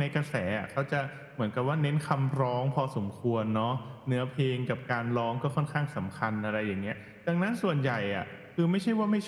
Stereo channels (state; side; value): identical; both; correlation 1.00